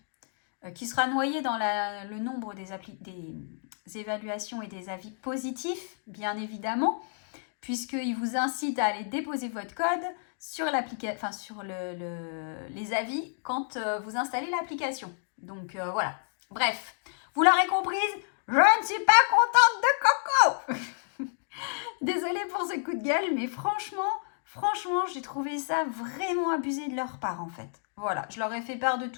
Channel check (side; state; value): right; silent; digital silence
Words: qui sera noyé dans le nombre des évaluations et des avis positifs, bien évidemment, puisqu'il vous incite à aller déposer votre code sur les avis quand vous installez l'application. Donc voilà. Bref, vous l'aurez comprise, je ne suis pas contente de Coco. Désolée pour ce coup de gueule, mais franchement, j'ai trouvé ça vraiment abusé de leur part en fait. Voilà, je leur ai fait part de